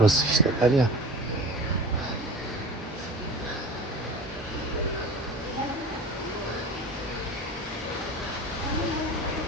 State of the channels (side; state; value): both; normal; correlation 0.36